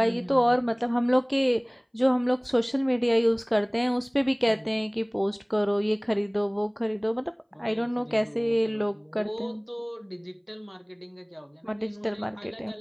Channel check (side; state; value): both; identical; correlation 1.00